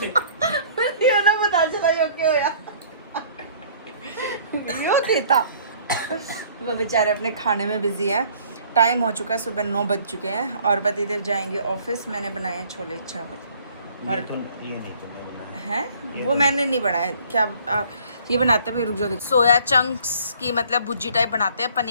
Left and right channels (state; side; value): inverted; both; correlation -0.55